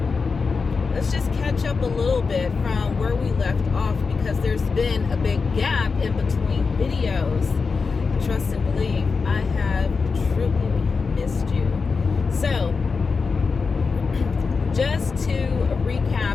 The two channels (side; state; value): right; quieter; 4.8 dB